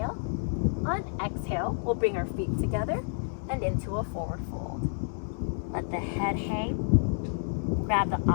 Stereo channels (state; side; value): silent; right; digital silence